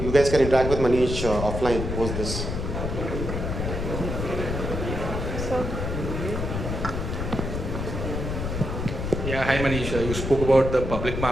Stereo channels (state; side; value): noise; left; rumble, 3 dB below the sound